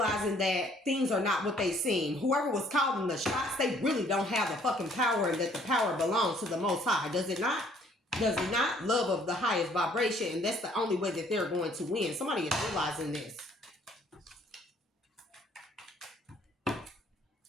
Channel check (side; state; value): both; normal; correlation 0.61